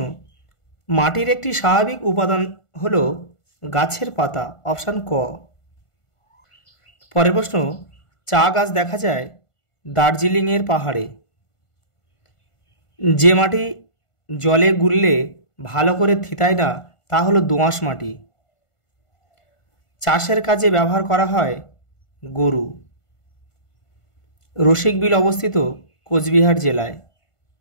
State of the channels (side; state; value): right; late; 1.5 ms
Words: মাটির একটি স্বাভাবিক উপাদান হলো গাছের পাতা, অপশান ক। পরের প্রশ্ন, চা গাছ দেখা যায় দার্জিলিংয়ের পাহাড়ে। যে মাটি জলে গুললে ভালো করে থিতায় না তা হলো দোআঁশ মাটি। চাষের কাজে ব্যবহার করা হয় গরু। রসিকবিল অবস্থিত কোচবিহার জেলায়।